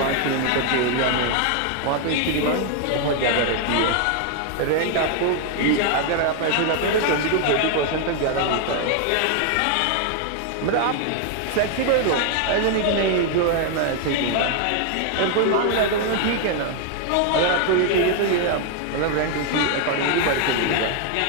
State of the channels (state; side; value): different; both; correlation 0.00